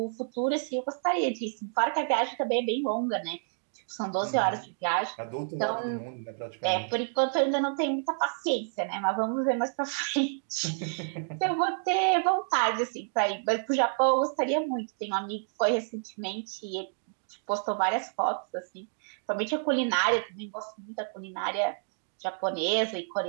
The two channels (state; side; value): silent; left; digital silence